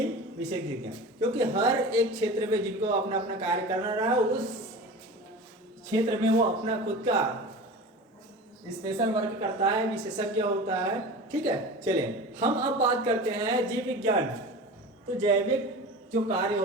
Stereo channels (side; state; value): both; normal; correlation 0.34